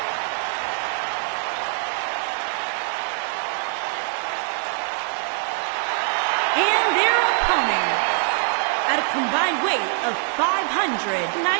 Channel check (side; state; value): left; silent; 56 dB below the other